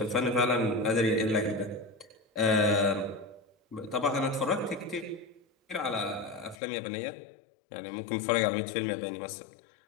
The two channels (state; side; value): drops out; right; at 6.6 s